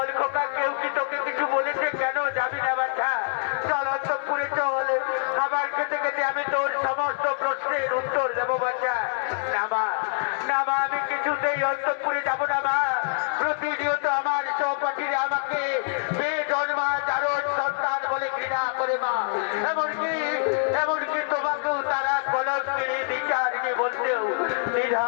খোকা, কেউ কি তোকে কিছু বলেছে? কেন যাবি না বাচ্চা? চল অন্তঃপুরে চল, খাবার খেতে খেতে আমি তোর সমস্ত প্রশ্নের উত্তর দেবো বাচ্চা। না মা, না মা, আমি কিছুতেই অন্তঃপুরে যাব না মা। প্রতিনিয়ত আমার সহপাঠীরা আমাকে বেজন্মা জারজ সন্তান বলে ঘৃণা করে মা, এমনকি তোমাকেও তারা কলঙ্কিনী বিচারিণী বলতেও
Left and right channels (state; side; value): silent; right; digital silence